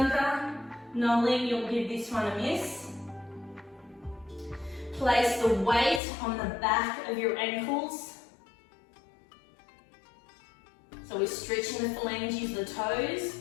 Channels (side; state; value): right; drops out; at 6.0 s